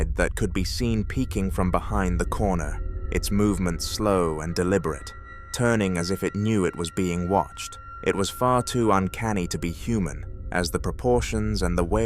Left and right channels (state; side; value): identical; both; correlation 1.00